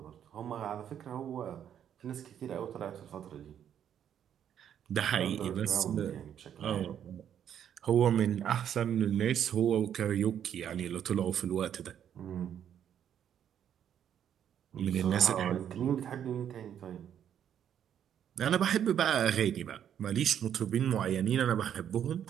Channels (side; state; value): left; quieter; 9.4 dB